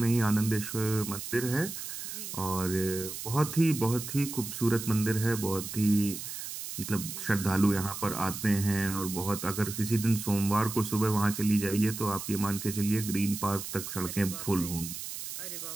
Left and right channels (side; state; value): right; noise; hiss, 8 dB below the sound